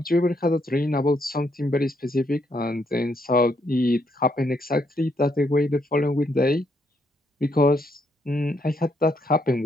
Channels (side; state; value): both; normal; correlation 0.75